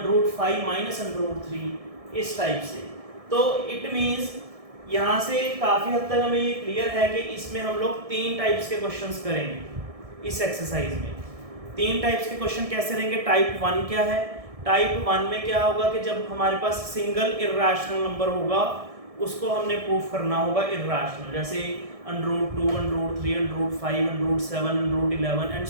- √3 इस टाइप से। तो इट मींस यहाँ से काफी हद तक हमें ये क्लियर है कि इसमें हम लोग 3 टाइप्स के क्वेश्चंस करेंगे इस एक्सरसाइज में। 3 टाइप्स के क्वेश्चन कैसे रहेंगे। टाइप 1 क्या है, टाइप 1 में क्या होगा कि जब हमारे पास सिंगल इरेशनल नंबर होगा उसको हमने प्रूफ करना होगा इरेशनल, जैसे √2, √3, √5, √7, √11 एंड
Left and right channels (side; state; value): left; late; 1.6 ms